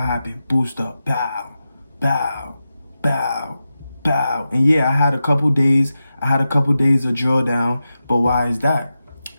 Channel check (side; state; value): both; inverted; correlation -0.91